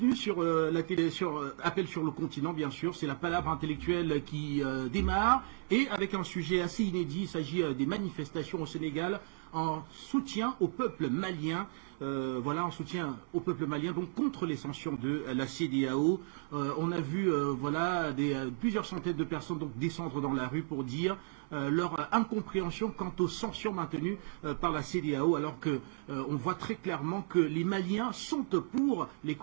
sur la télé, sur Appel sur le continent, bien sûr. C'est la palabre intellectuelle qui démarre et avec un sujet assez inédit. Il s'agit des manifestations au Sénégal en soutien au peuple malien. Voilà, en soutien au peuple malien, donc contre les sanctions de la CEDEAO. On a vu voilà plusieurs centaines de personnes donc descendre dans la rue pour dire leur incompréhension quant aux sanctions maintenues par la CEDEAO, alors que on voit très clairement que les Maliens sont pour les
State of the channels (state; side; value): silent; left; 55 dB below the other